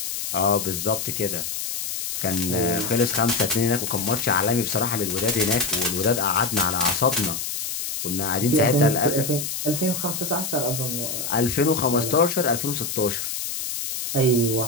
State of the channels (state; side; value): noise; left; hiss, 4 dB below the sound